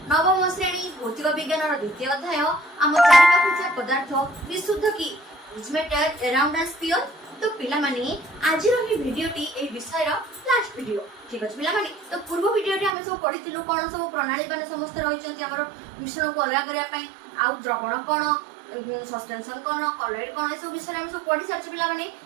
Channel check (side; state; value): left; drops out; at 13.0 s